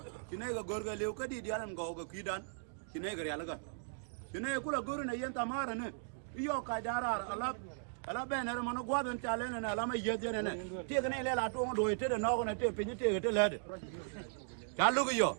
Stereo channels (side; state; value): left; silent; digital silence